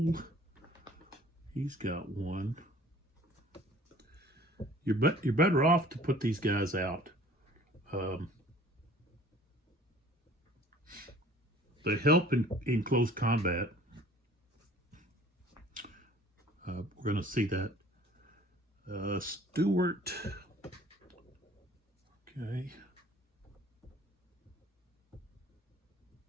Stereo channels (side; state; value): both; normal; correlation 0.51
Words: he's got one. You're better off to put these guys out. They help in close combat. We're going to see that. Stewart. Okay.